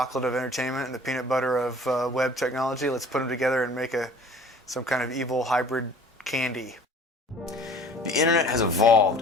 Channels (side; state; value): both; normal; correlation 0.48